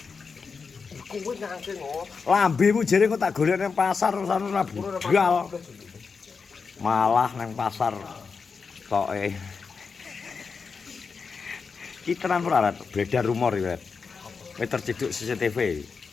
Iku wis nangke ngono. Lambemu jere kok tak golek nang pasar terus ora budal. Malah nang pasar toke. Ki tenan ora beredar rumor iki, wis terciduk CCTV.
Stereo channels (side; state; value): right; quieter; 5.2 dB